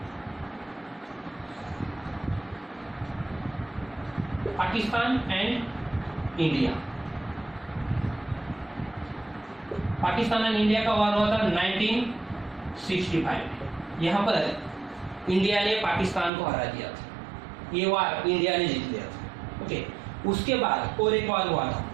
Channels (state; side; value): drops out; left; at 16.3 s